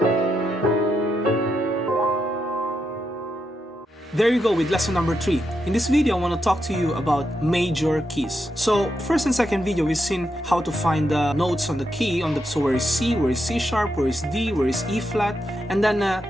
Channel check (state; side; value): normal; both; correlation 0.83